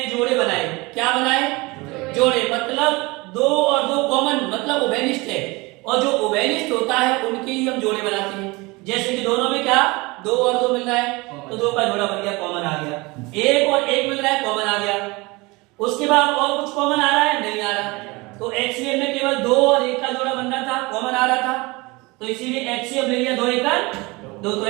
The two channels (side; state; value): left; quieter; 24.2 dB